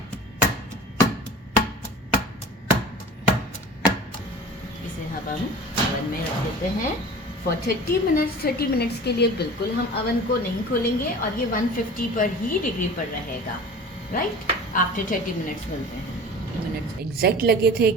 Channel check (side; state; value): both; normal; correlation 0.40